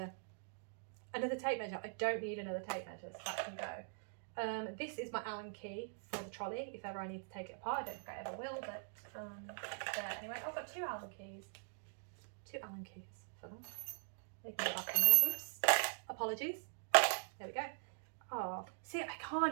tape measure. I don't need another tape measure, so that can go. This is my Allen key for the trolley, if ever I need to take it apart. I don't think I ever will, but there. Anyway, I've got two Allen keys. Two Allen keys for them. They can go back in there. Oops. Apologies. There we go. Oh, see, I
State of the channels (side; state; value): left; silent; digital silence